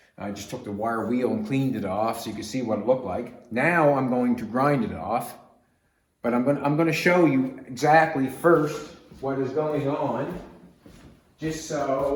I just took the wire wheel and cleaned it off so you can see what it looked like. Now I'm going to grind it off, but I'm going to show you exactly first what is going on, just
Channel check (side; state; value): both; identical; correlation 1.00